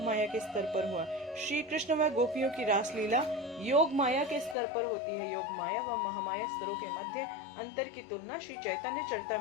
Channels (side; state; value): right; drops out; at 4.5 s